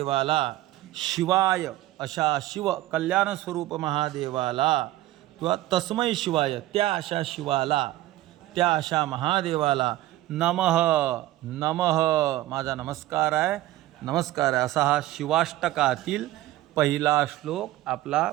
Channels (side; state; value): left; quieter; 15.7 dB